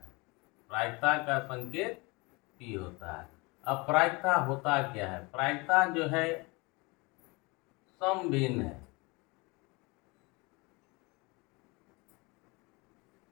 प्रायिकता का संकेत P होता है। अब प्रायिकता होता क्या है? प्रायिकता जो है समभिन्न है।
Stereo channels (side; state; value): right; quieter; 26.4 dB